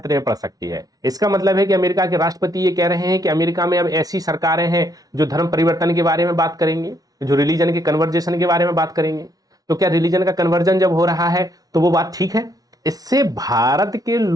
में पड़ सकती है। इसका मतलब है कि अमेरिका के राष्ट्रपति ये कह रहे हैं कि अमेरिका में अब ऐसी सरकारें हैं जो धर्म परिवर्तन के बारे में बात करेंगे, जो रिलीजन के कन्वर्जेशन के बारे में बात करेंगे। तो क्या रिलीजन का कन्वर्जन जब हो रहा है तो वो बात ठीक है? इससे भारत के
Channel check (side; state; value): left; late; 0.18 ms